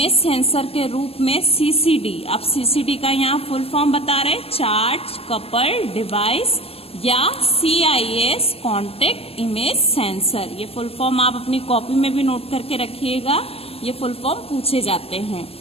सेंसर के रूप में CCD, अब CCD का यहाँ फुल फॉर्म बता रहे, चार्ज कपल डिवाइस, या CIS कॉन्टेक्ट इमेज सेंसर। ये फुल फॉर्म आप अपनी कॉपी में भी नोट करके रखिएगा, ये फुल फॉर्म पूछे जाते हैं।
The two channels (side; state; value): right; late; 0.28 ms